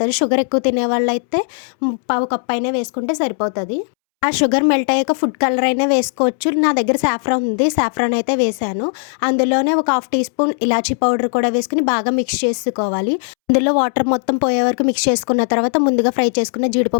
షుగర్ ఎక్కువ తినేవాళ్ళైతే పావు కప్ అయినా వేసుకుంటే సరిపోతది. ఆ షుగర్ మెల్ట్ అయ్యాక ఫుడ్ కలర్ అయినా వేసుకోవచ్చు. నా దగ్గర సాఫ్రాన్ ఉంది. సాఫ్రాన్ అయితే వేశాను. అందులోనే ఒక హాఫ్ టీ స్పూన్ ఇలాచీ పౌడర్ కూడా వేసుకొని బాగా మిక్స్ చేసుకోవాలి. అందులో వాటర్ మొత్తం పోయే వరకు మిక్స్ చేసుకున్న తర్వాత ముందుగా ఫ్రై చేసుకున్న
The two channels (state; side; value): silent; right; 68 dB below the other